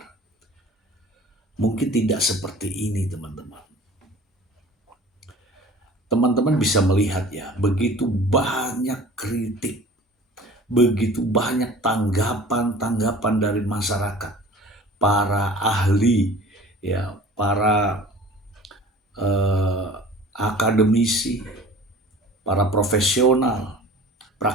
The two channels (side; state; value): both; normal; correlation 0.44